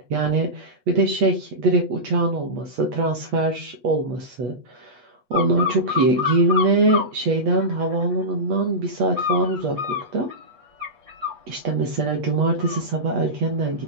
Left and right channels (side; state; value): left; late; 8.3 ms